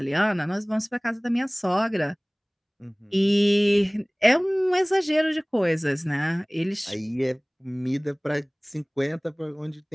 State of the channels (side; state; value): both; identical; correlation 1.00